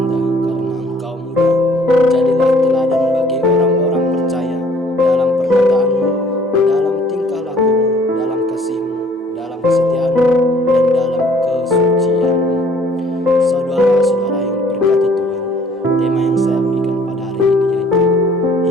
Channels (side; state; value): both; normal; correlation 0.57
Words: karena engkau muda. Jadilah teladan bagi orang-orang percaya dalam perkataanmu, dalam tingkah lakumu, dalam kasihmu, dalam kesetiaanmu, dan dalam kesucianmu. Saudara-saudara yang diberkati Tuhan, tema yang saya berikan pada hari ini yaitu